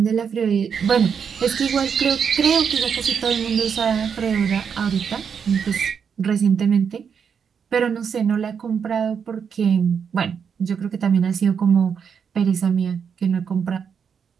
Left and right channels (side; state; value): left; quieter; 6.9 dB